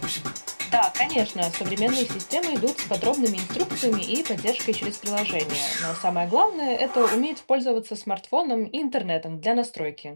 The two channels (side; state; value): both; inverted; correlation -1.00